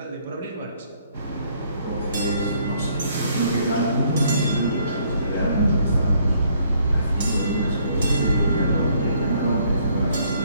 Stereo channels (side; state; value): both; inverted; correlation -0.66